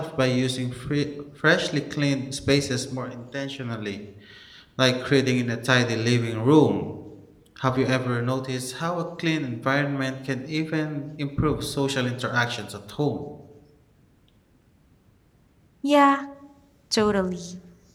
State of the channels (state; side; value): identical; both; correlation 1.00